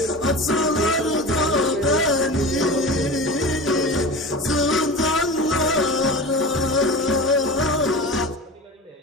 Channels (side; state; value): both; normal; correlation 0.31